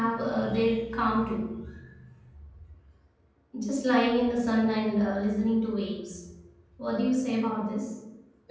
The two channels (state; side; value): identical; both; correlation 1.00